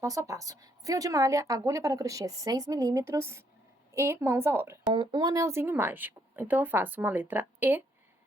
a passo. Fio de malha, agulha para crochê 6 milímetros e mãos à obra. Com um anelzinho mágico. Então, eu faço uma letra E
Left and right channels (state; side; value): normal; both; correlation 0.71